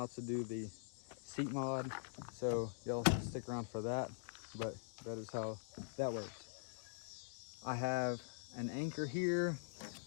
to do the seat mod, so y'all stick around for that. But that is how that works. I have an anchor here.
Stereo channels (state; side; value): silent; right; digital silence